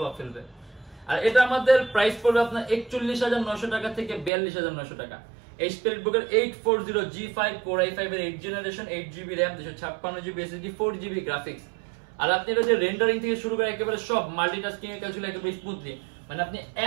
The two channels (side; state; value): left; drops out; at 4.3 s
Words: ফেলবে। আর এটা আমাদের প্রাইস পড়বে আপনার 41,900 টাকা থেকে 42,900 টাকা। HP EliteBook-এর 840G5 Core i5 এর 8 generation 8GB RAM 256GB SSD 4GB graphics. আর আপনি এটা যে রেন্ডারিং থেকে শুরু করে একেবারে সব মাল্টিটাস্কিং এর কাজগুলো একেবারে স্মুথলি, মানে আপনি